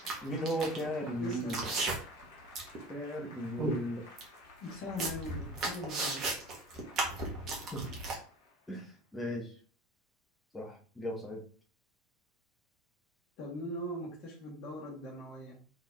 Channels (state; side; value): normal; both; correlation 0.40